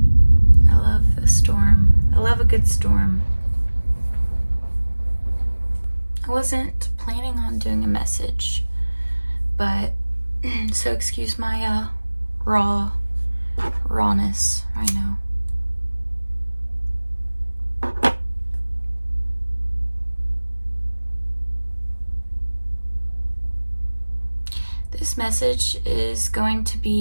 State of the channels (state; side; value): inverted; both; correlation -1.00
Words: the storm. I love a good storm. I wasn't planning on doing a message, but so excuse my rawness right now. This message is going to